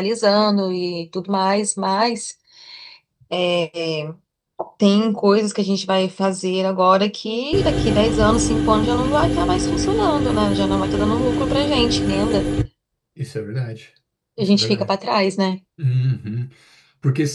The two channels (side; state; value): both; identical; correlation 1.00